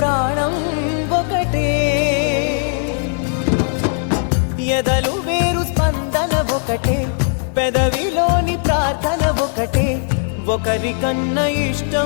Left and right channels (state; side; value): silent; right; digital silence